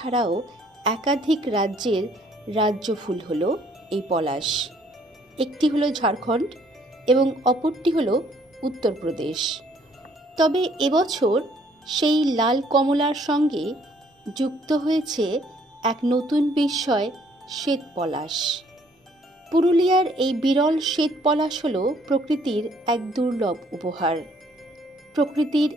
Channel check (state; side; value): normal; both; correlation 0.64